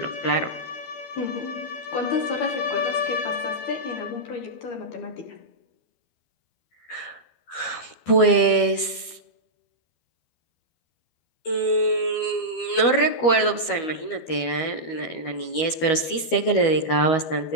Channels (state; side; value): late; right; 12 ms